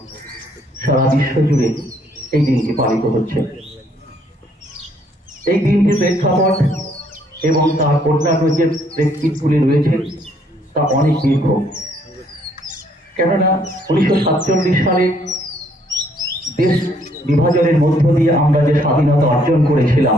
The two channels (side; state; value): both; normal; correlation 0.67